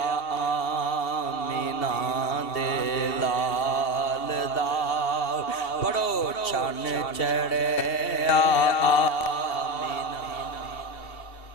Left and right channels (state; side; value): late; right; 2.7 ms